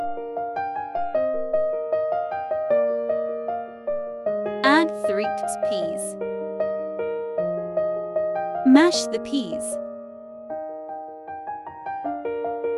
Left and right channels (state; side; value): identical; both; correlation 1.00